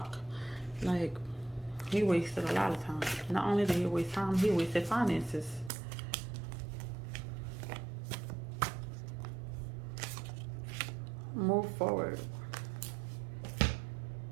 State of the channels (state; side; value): drops out; left; at 5.7 s